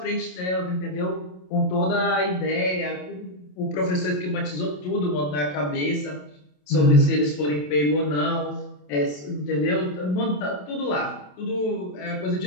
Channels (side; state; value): right; late; 27 ms